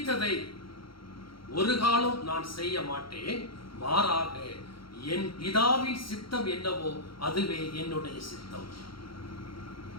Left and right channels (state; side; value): late; right; 0.73 ms